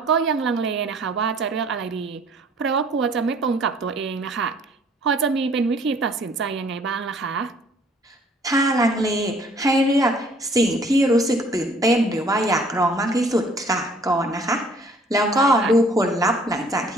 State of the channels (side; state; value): both; normal; correlation 0.57